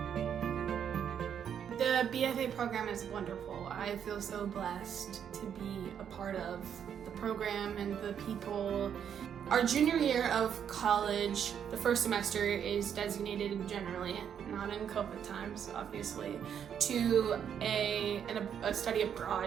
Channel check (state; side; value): quieter; left; 8.4 dB